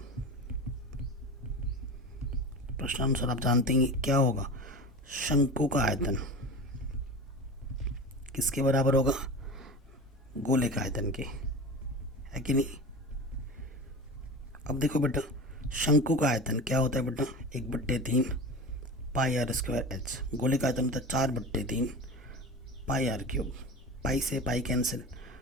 आप जानते हैं क्या होगा? शंकु का आयतन किसके बराबर होगा? गोले का आयतन के, है कि नहीं? अब देखो बेटा, शंकु का आयतन क्या होता है बेटा? 1/3 पाई आर स्क्वायर एच। गोले का आयतन होता है 4/3 पाई आर क्यूब। पाई से पाई कैंसिल,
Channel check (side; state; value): both; normal; correlation 0.30